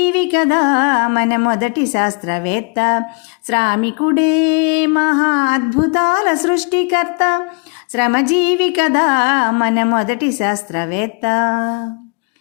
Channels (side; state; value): right; quieter; 34.9 dB